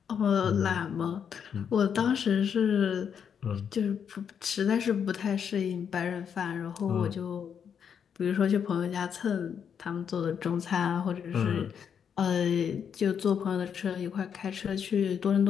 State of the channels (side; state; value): right; quieter; 7.6 dB